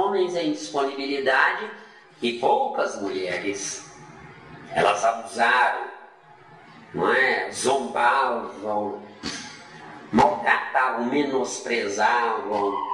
em disponibilidade e poucas mulheres. Elas abusaram, não é? Zombavam, maltratavam, menosprezavam.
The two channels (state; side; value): identical; both; correlation 1.00